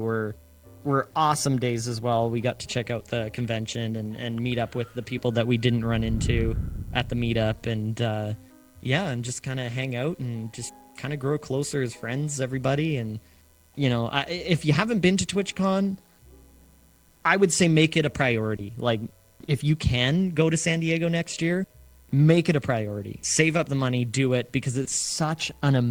awesome days as well. We got to check out the convention and meet up with the people that we didn't run into at the meetup, and and just kind of hang out and just kind of grow closer as friends, everybody. And if you haven't been to TwitchCon, I would say make it a priority. Like, if you can go to San Diego next year, make it a priority. Save up the money, do it, because it's such an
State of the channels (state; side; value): identical; both; correlation 1.00